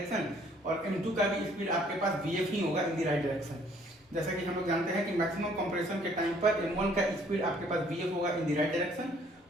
और m2 का भी स्पीड आपके पास vf ही होगा इन द राइट डायरेक्शन। जैसा कि हम लोग जानते हैं कि मैक्सिमम कंप्रेशन के टाइम पर m1 का स्पीड आपके पास vf होगा इन द राइट डायरेक्शन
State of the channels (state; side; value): normal; both; correlation 0.61